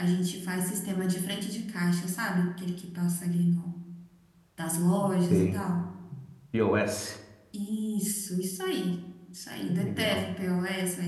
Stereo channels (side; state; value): both; identical; correlation 1.00